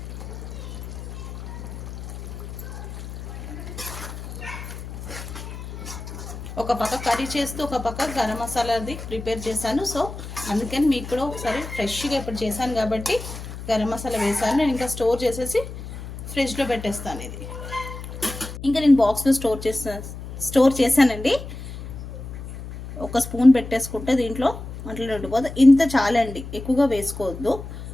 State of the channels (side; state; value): left; noise; hum, 10 dB below the sound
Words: ఒక పక్క కర్రీ చేస్తూ ఒక పక్క గరం మసాలాది ప్రిపేర్ చేశాను. సో అందుకని మీకు కూడా ఒకసారి ఫ్రెష్గా ఇప్పుడు చేశాను కాబట్టి గరం మసాలా వేసాను. నేను ఇంకా స్టోర్ చేసేసి ఫ్రిడ్జ్లో పెట్టేస్తాను. ఇది ఇంకా నేను బాక్స్లో స్టోర్ చేశానండి. ఒక స్పూన్ పెట్టేసుకుంటే దీంట్లో అట్లా ఉండిపోతుంది. ఇంత చాలండి, ఎక్కువగా వేసుకోవద్దు.